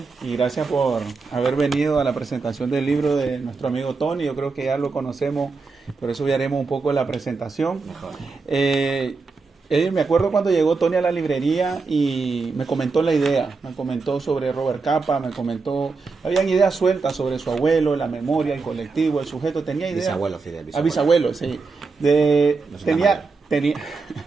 y gracias por haber venido a la presentación del libro de nuestro amigo Tony. Yo creo que ya lo conocemos, por eso ya haremos un poco la presentación. Mejor. Me acuerdo cuando llegó Tony a la librería y me comentó la idea, me comentó sobre Robert Capa, me comentó, habían ideas sueltas sobre su abuelo, la memoria, el colectivo, el sujeto, tenía ideas. Bisabuelo, Fidel. Bisabuelo, sí. No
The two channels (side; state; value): left; quieter; 4.3 dB